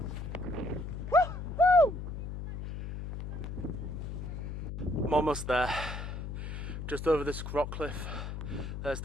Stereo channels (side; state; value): left; noise; hum, 6 dB below the sound